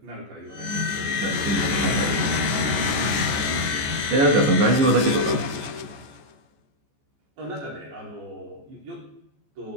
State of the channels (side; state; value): left; late; 14 ms